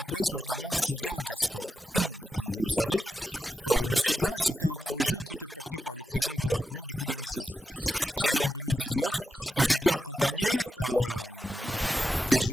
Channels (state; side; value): normal; both; correlation 0.88